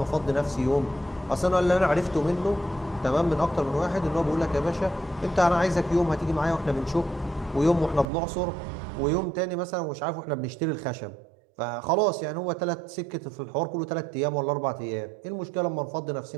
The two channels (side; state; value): left; drops out; at 8.1 s